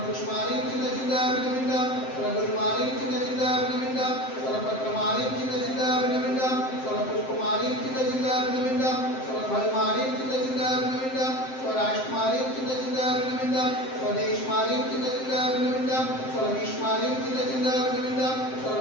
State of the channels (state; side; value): late; right; 7.7 ms